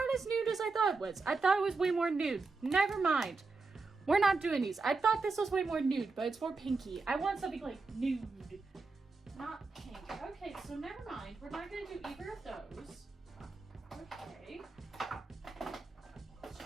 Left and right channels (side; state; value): left; quieter; 4.0 dB